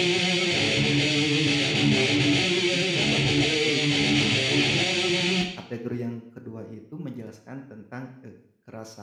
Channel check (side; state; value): both; identical; correlation 1.00